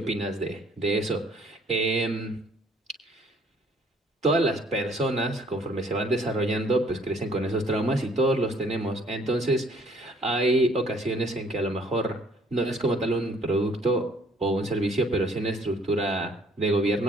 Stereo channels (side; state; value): both; normal; correlation 0.60